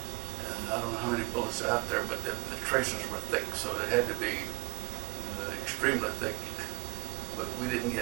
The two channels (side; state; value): left; quieter; 23.3 dB